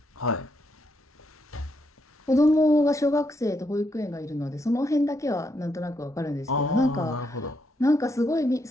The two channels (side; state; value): both; normal; correlation 0.78